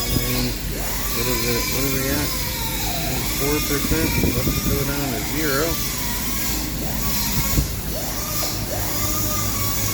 4%. Let's go down to 0.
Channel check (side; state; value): both; identical; correlation 1.00